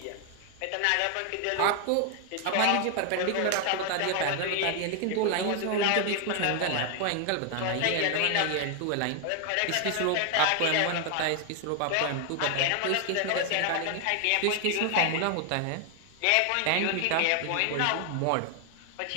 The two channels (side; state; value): both; different; correlation 0.00